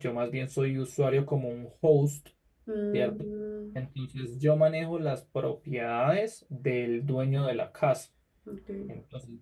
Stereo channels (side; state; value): both; identical; correlation 1.00